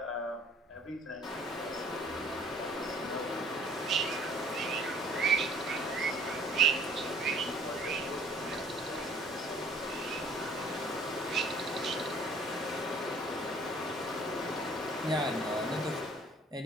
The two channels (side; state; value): both; normal; correlation 0.54